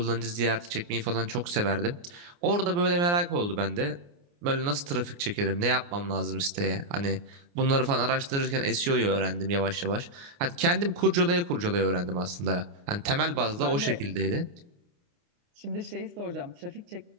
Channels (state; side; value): late; left; 29 ms